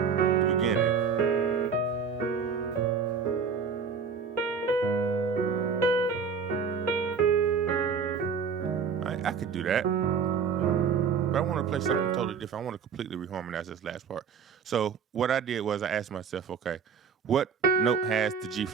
beginning. I could do that, but I want to play something totally different. I want to completely reharmonize this last part. So what I did was I asked myself, okay, what note has the G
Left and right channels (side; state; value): left; quieter; 6.1 dB